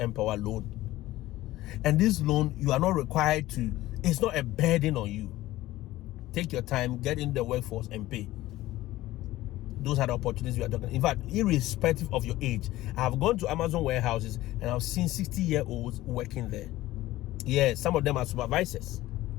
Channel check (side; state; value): right; quieter; 16.4 dB